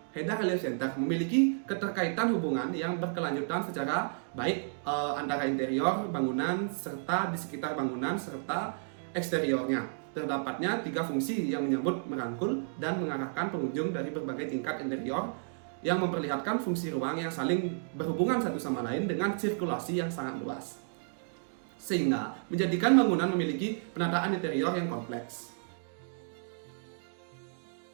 Heda Relief Center memiliki keterkaitan hubungan yang berkelanjutan secara baik antara interior bangunan serta di sekitar bangunan serta eksteriornya. Terdapatnya 3 fungsi yang menyambut, merangkul, dan mengarahkan pengunjung dari berbagai tingkat interior yang memperlihatkan fungsi ruang yang saling berhubungan satu sama lain dengan sirkulasi yang sangat luas. Sehingga menjadikan bangunan memiliki penataan interior yang kompleks.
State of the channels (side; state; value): left; silent; digital silence